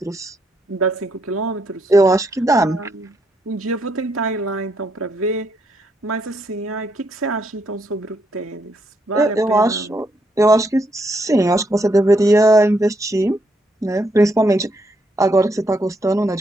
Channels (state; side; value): normal; both; correlation 0.76